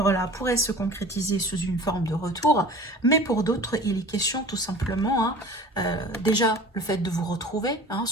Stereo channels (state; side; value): normal; both; correlation 0.42